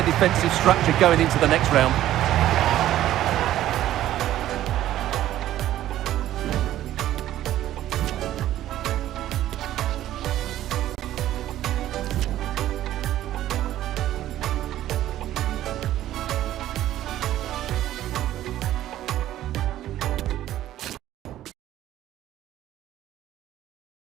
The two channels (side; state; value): left; quieter; 13.2 dB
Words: defensive structure going into the next round.